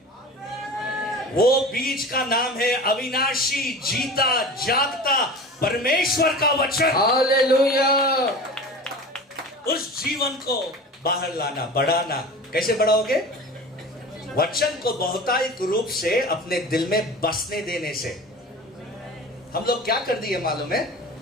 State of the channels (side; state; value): both; normal; correlation 0.35